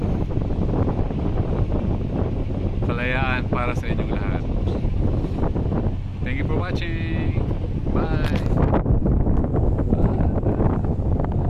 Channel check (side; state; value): both; identical; correlation 1.00